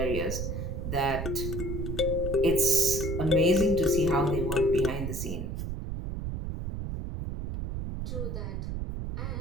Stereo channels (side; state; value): right; noise; rumble, 4 dB below the sound